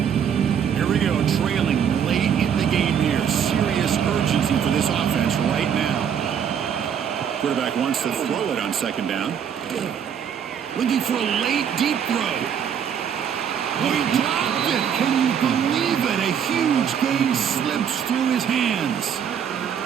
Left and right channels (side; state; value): left; quieter; 8.1 dB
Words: Here we go, trailing late in the game here. Serious urgency for this offense right now. Quarterback wants to throw it on 2nd down. Looking for a late deep throw. Oh, he dropped it. Can you believe it? A huge gain slips through his hands.